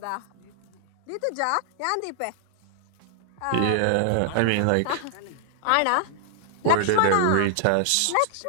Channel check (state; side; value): different; both; correlation -0.01